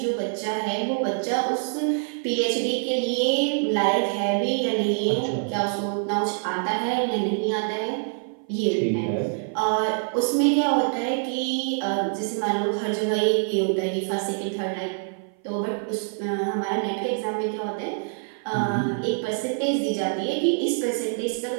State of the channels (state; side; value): silent; left; 56 dB below the other